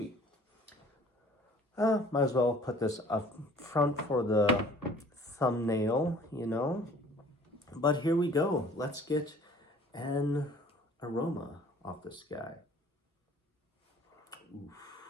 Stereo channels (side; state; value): both; normal; correlation 0.52